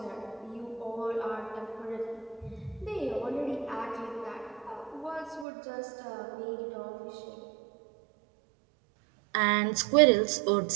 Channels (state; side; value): drops out; left; at 5.5 s